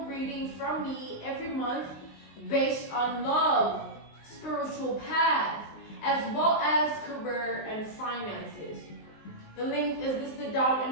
reading from me every month based on love, spiritual path, as well as career and finances. The link is listed down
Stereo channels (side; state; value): right; late; 19 ms